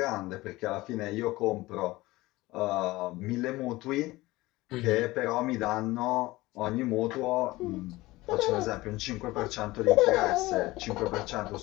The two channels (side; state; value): right; quieter; 19.5 dB